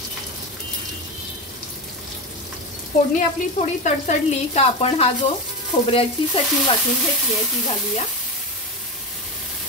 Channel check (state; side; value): normal; both; correlation 0.20